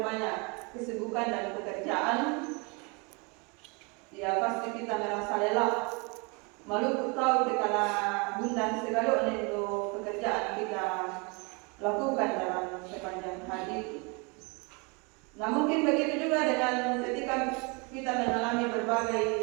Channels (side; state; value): left; quieter; 30.9 dB